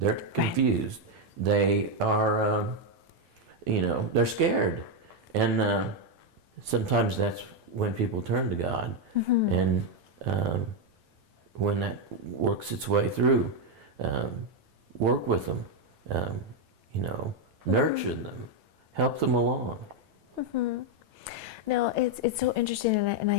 confused. They are, you know, they're scared. And sometimes that's when people turn to God. And when that works its way through, work with them, you know, nurture them, help them along. No, it's so interesting, and I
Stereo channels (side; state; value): left; late; 9.0 ms